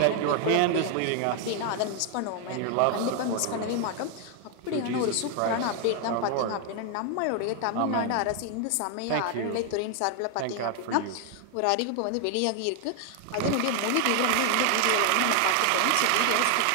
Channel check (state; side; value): different; both; correlation 0.00